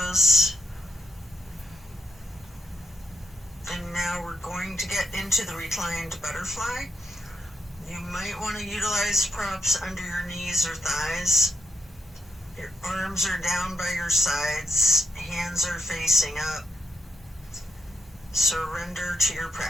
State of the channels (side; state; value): both; normal; correlation 0.81